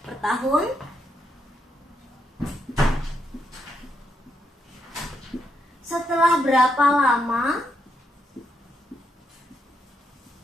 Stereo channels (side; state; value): both; normal; correlation 0.79